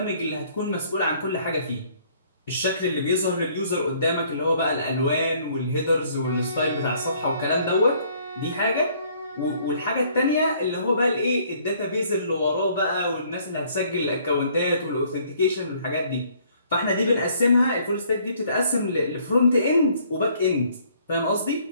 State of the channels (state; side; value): inverted; both; correlation -0.61